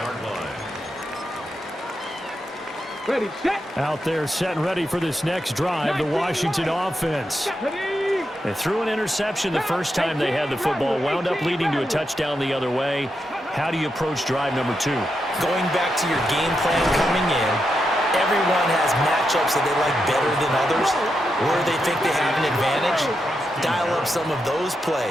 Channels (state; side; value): normal; both; correlation 0.85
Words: line. Ready, set. Out there set and ready for this next drive, the Washington offense. They threw an interception the first time they had the football, wound up leading to a touchdown the other way. How do you approach drive number 2? Going back to your game plan coming in, everyone has matchups that they like better than others, where they think they have an advantage. Dial up some of those